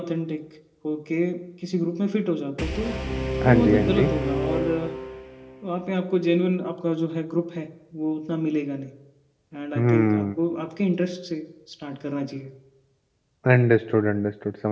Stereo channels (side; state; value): both; identical; correlation 1.00